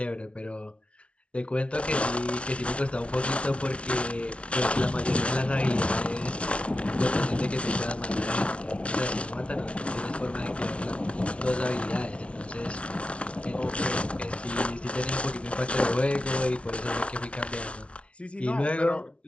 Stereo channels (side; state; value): right; late; 0.061 ms